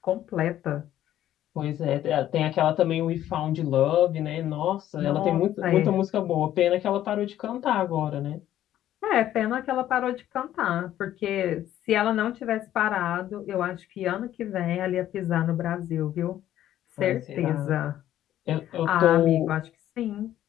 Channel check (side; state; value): right; quieter; 12.3 dB